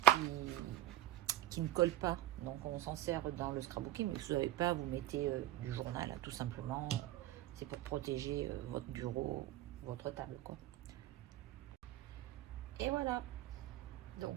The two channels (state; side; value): quieter; left; 13.6 dB